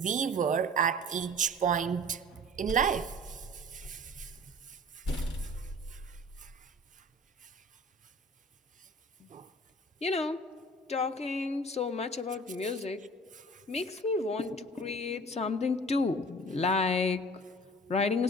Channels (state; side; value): normal; both; correlation 0.43